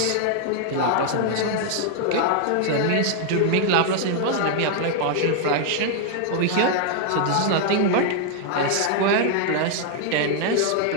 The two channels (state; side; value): different; both; correlation 0.00